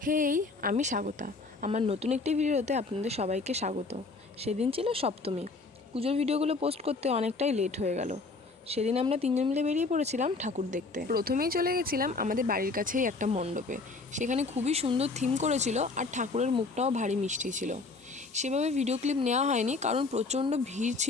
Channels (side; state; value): right; quieter; 3.8 dB